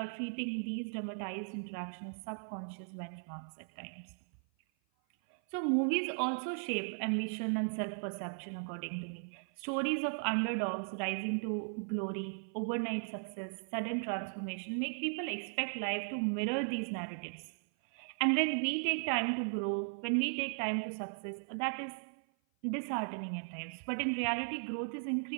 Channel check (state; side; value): silent; left; 53 dB below the other